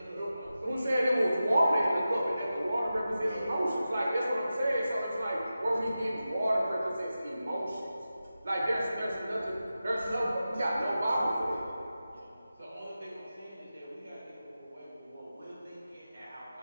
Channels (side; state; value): both; inverted; correlation -0.93